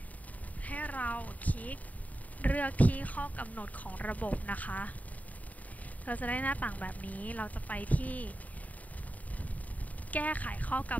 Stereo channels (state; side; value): late; right; 0.073 ms